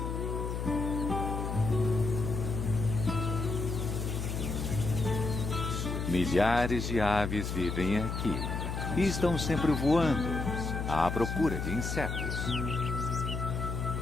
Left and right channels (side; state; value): left; noise; hum, 3 dB below the sound